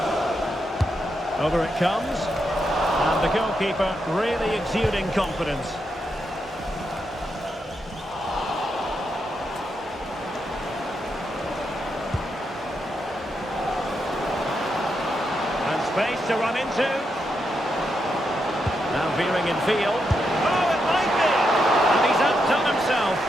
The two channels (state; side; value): normal; both; correlation 0.83